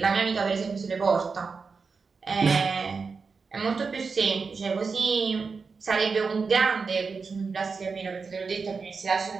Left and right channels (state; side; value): quieter; left; 4.9 dB